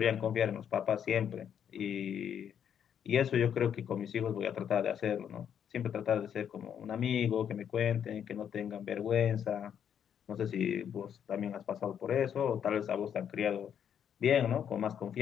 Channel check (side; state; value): right; quieter; 8.7 dB